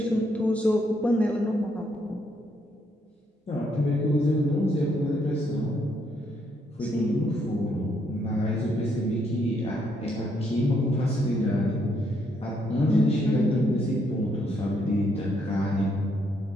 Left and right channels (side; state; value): both; normal; correlation 0.73